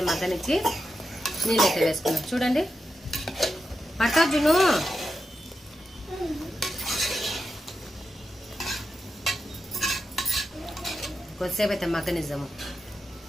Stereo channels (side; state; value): both; normal; correlation 0.88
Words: మగ్గనిచ్చి నీళ్ళు అయితే వేసుకున్నాం. చూడండి పట్టాజును కొద్దిసేపు అయితే మగ్గనిద్దాము.